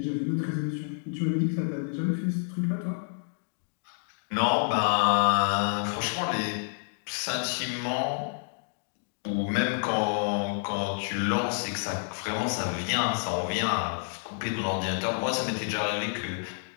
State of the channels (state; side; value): silent; right; digital silence